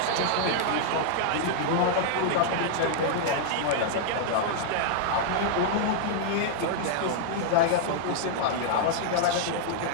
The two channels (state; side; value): different; both; correlation -0.01